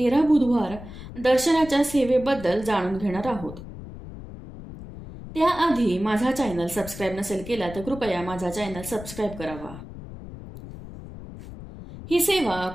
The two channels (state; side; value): noise; left; rumble, 13 dB below the sound